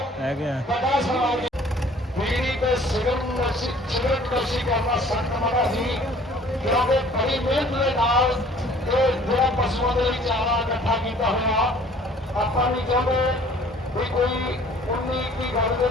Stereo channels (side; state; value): both; normal; correlation 0.53